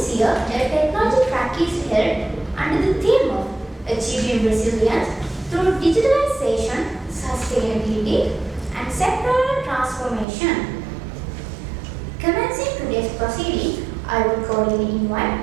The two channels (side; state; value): left; drops out; at 10.2 s